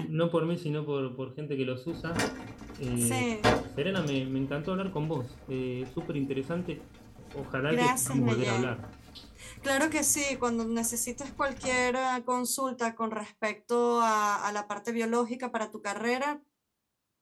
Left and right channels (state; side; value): identical; both; correlation 1.00